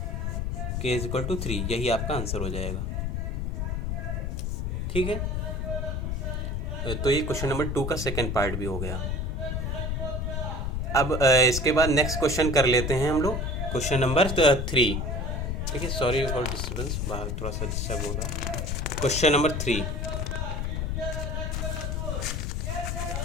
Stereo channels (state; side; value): noise; left; rumble, 1 dB below the sound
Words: k = 3, यही आपका आंसर हो जाएगा, ठीक है। तो ये क्वेश्चन नंबर 2 का सेकंड पार्ट भी हो गया। अब इसके बाद नेक्स्ट क्वेश्चन कर लेते हैं हम लोग, क्वेश्चन नंबर 3, ठीक है। सॉरी फॉर डिस्टर्बेंस, बाहर थोड़ा सा डिस्टर्ब हो रहा है। क्वेश्चन नंबर 3,